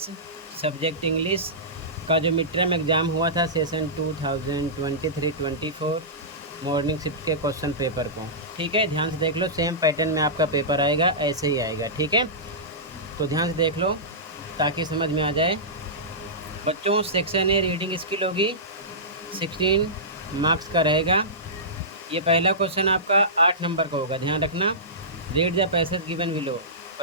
सब्जेक्ट इंग्लिश का जो मिड टर्म एग्ज़ाम हुआ था सेशन 2023-24 मॉर्निंग शिफ्ट के क्वेश्चन पेपर को। ठीक है, ध्यान से देख लो, सेम पैटर्न में आपका पेपर आएगा, ऐसे ही आएगा। ठीक है, तो ध्यान से देख लो ताकि समझ में आ जाए। बच्चों, सेक्शन ए रीडिंग स्किल होगी, 16 मार्क्स का रहेगा। ये पहला क्वेश्चन आपका 8 नंबर का होगा, ध्यान रखना। Read the passage given below,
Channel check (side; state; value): both; normal; correlation -0.18